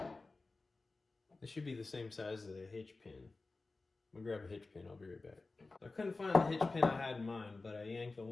this should be the same size as a hitch pin. I'm gonna grab a hitch pin, I'll be right back. I couldn't find the hitch pin I had in mind, but I yanked the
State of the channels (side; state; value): right; quieter; 3.5 dB